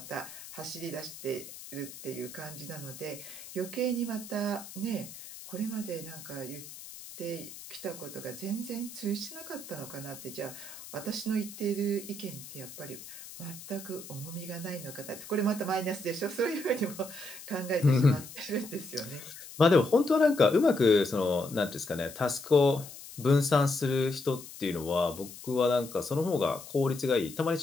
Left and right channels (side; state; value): left; noise; hiss, 14 dB below the sound